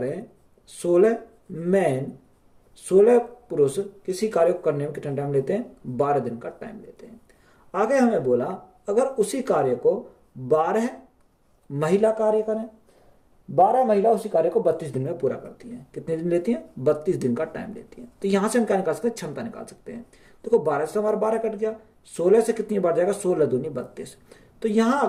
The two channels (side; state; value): both; identical; correlation 1.00